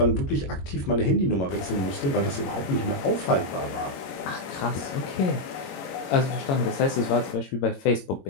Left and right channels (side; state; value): right; late; 22 ms